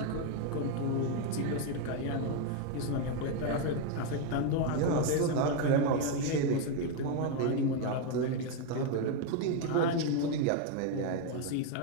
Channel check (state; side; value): different; both; correlation 0.01